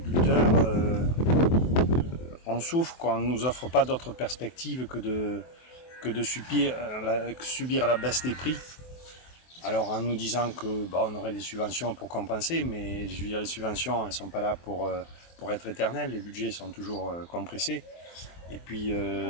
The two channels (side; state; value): right; late; 23 ms